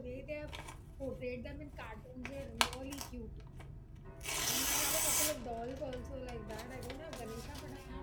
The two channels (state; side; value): identical; both; correlation 1.00